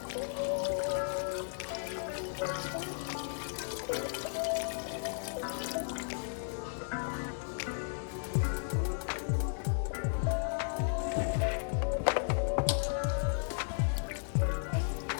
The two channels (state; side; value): silent; right; digital silence